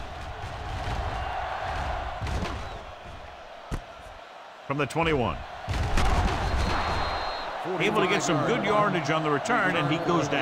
From the 21. Able to get some good yardage on the return, and he goes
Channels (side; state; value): both; identical; correlation 1.00